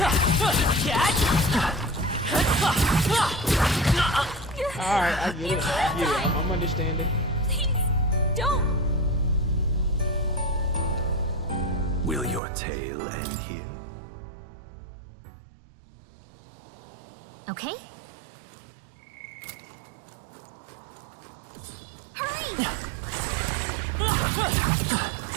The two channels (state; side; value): drops out; left; at 12.4 s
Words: Alright, I get it. I'm understanding. Please, don't. Will your tail end here? Okay. Hurry! Oh,